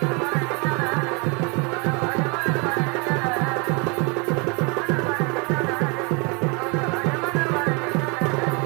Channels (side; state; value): left; quieter; 31.6 dB